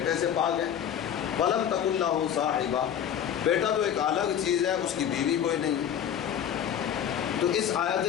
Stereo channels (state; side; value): quieter; right; 9.3 dB